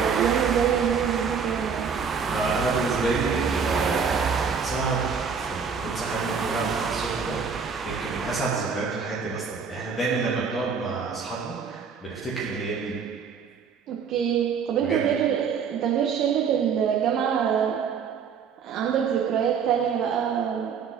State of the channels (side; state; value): left; quieter; 6.2 dB